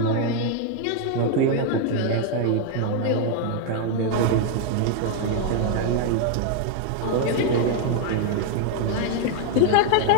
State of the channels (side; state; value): both; different; correlation 0.00